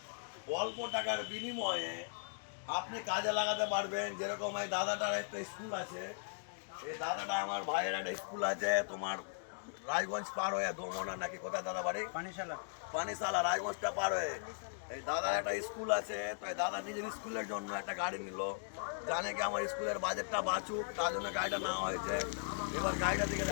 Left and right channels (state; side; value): silent; right; digital silence